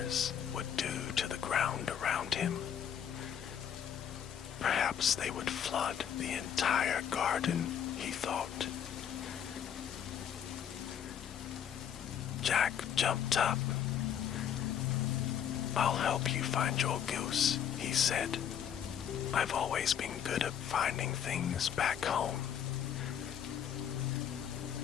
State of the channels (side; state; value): right; quieter; 9.0 dB